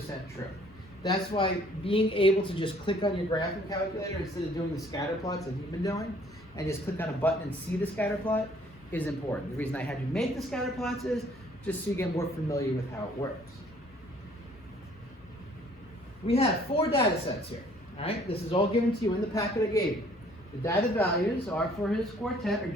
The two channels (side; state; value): left; noise; hum, 26 dB below the sound